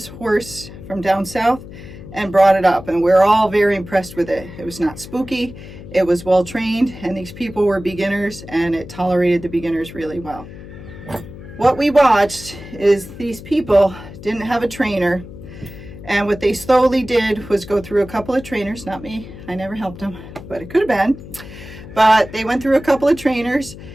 horse from down south and brought it up, and we're all very impressed with it. It was not spooky, it was well-trained, and these people were beginners, and it tolerated the beginners really well. What we watched is these people didn't have a trainer, and what they slowly did was go through a couple of trainers, not me, I never helped them, but it could have been. But they went through a couple of trainers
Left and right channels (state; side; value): noise; left; hum, 15 dB below the sound